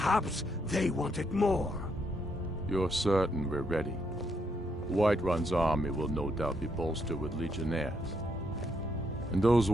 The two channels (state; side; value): normal; both; correlation 0.76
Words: they want it more. You're certain we're ready? Whiterun's army will no doubt be bolstered with legionnaires. And those